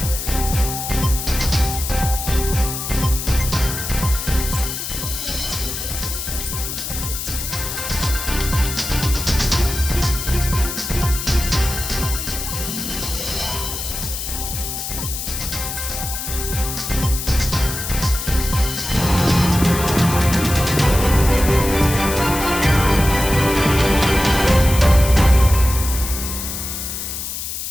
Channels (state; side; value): noise; left; hiss, 5 dB below the sound